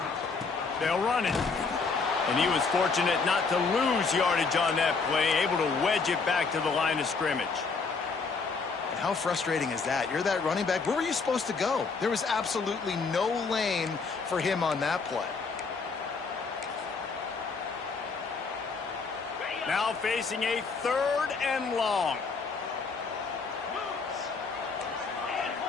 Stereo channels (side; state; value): right; quieter; 4.7 dB